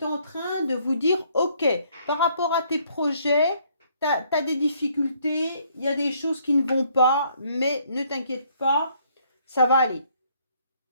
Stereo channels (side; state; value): both; inverted; correlation -0.66